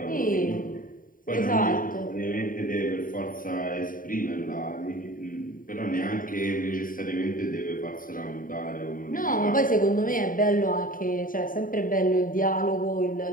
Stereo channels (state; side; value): late; right; 0.40 ms